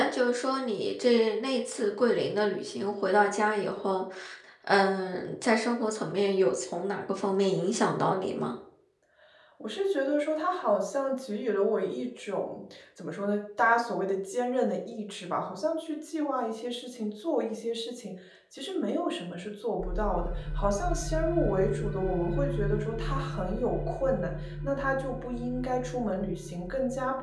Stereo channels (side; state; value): both; identical; correlation 1.00